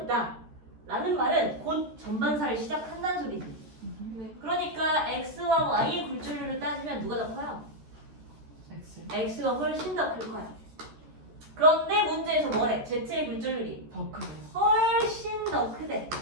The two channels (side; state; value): left; late; 13 ms